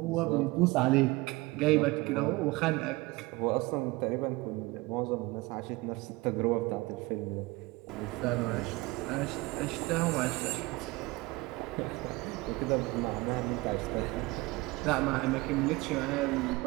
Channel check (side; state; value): left; quieter; 22.2 dB